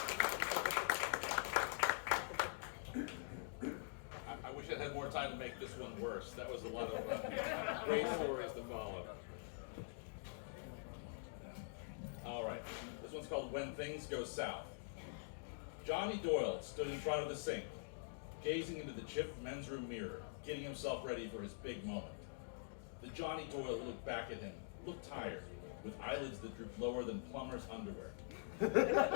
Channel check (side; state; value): right; silent; digital silence